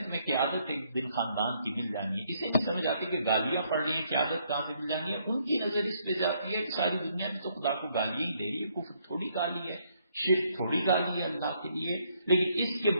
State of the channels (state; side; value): inverted; both; correlation -0.70